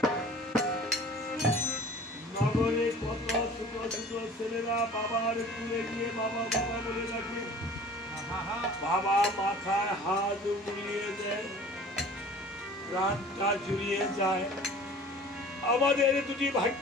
নগরে কত ছোট ছোট ছেলেরা বাবার তুলে গিয়ে বাবা বাবা বলে ডাকে, বাবা মাথায় হাত বুলিয়ে দেয়, প্রাণটা জুড়িয়ে যায়। আমাদের দুটি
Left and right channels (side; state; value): both; normal; correlation 0.45